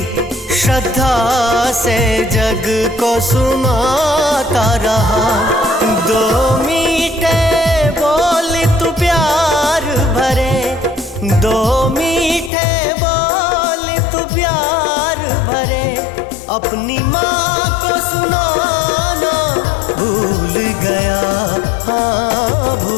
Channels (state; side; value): drops out; right; at 12.5 s